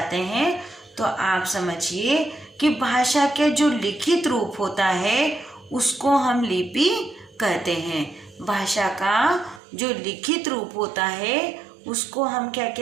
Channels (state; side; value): drops out; left; at 9.6 s